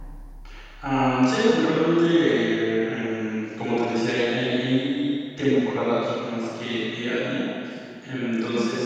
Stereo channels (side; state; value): both; identical; correlation 1.00